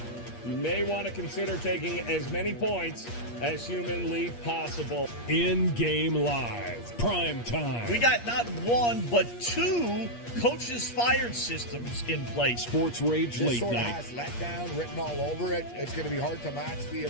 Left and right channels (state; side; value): late; right; 8.5 ms